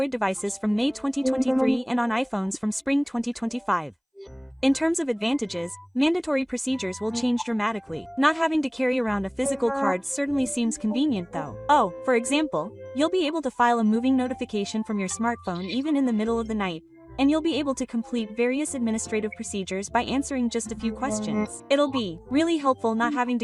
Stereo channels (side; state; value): both; identical; correlation 1.00